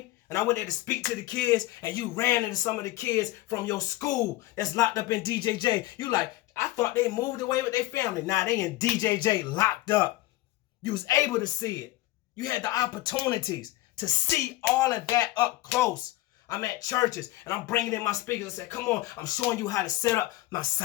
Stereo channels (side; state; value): right; quieter; 17.7 dB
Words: And I went there to speak to the kids, and you ran into some of the kids from your school that's locked up in DJJ. You like, I thought they moved away with their family. Now they in DJJ locked up. You was able to see it. You had the opportunities to see all of that up close. I'm at churches, and I'm bringing in my speakers and say, come on, I'm showing you how to set up my